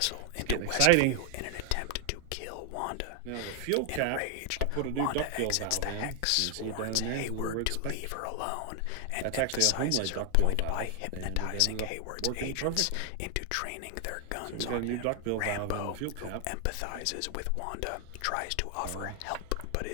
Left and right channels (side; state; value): both; different; correlation 0.00